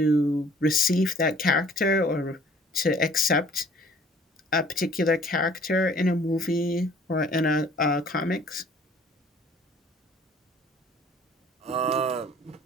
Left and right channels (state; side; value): normal; both; correlation 0.54